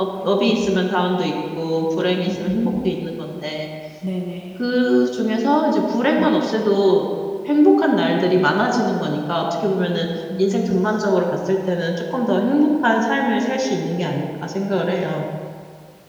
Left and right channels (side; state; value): both; identical; correlation 1.00